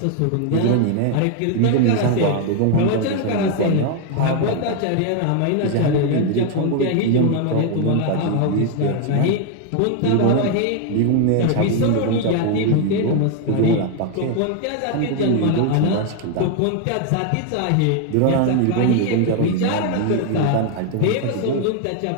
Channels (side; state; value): both; different; correlation 0.00